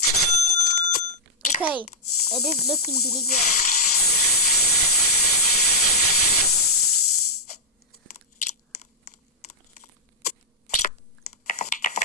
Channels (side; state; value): both; normal; correlation -0.06